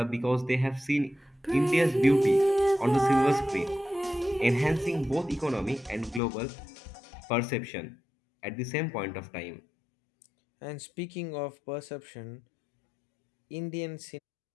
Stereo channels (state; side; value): drops out; right; at 6.2 s